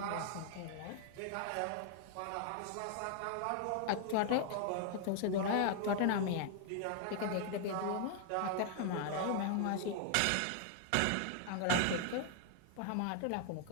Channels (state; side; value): different; both; correlation 0.00